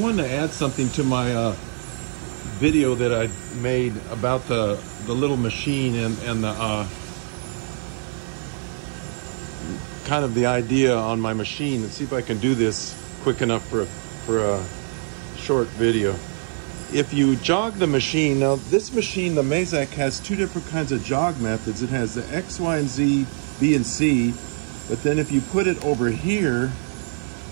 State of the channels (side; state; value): left; silent; 63 dB below the other